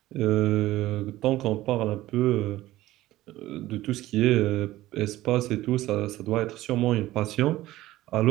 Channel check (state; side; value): quieter; left; 16.1 dB